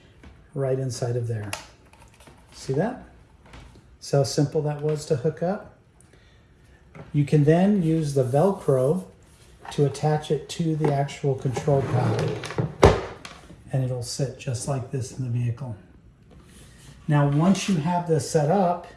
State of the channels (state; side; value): identical; both; correlation 1.00